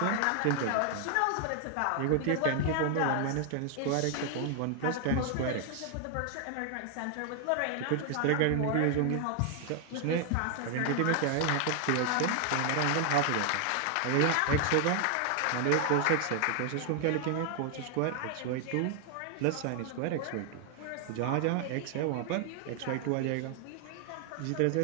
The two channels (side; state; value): both; different; correlation 0.00